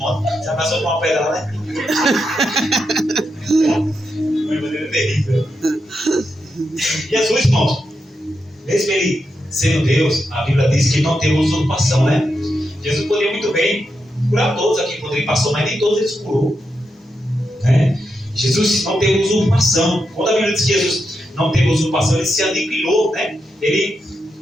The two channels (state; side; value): normal; both; correlation 0.85